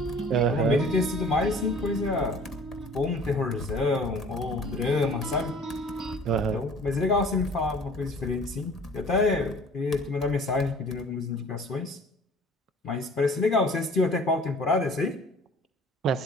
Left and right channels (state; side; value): normal; both; correlation 0.48